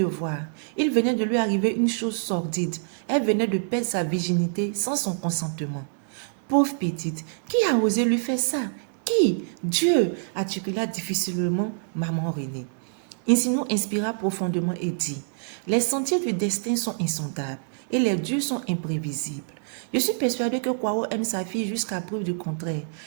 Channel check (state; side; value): silent; left; digital silence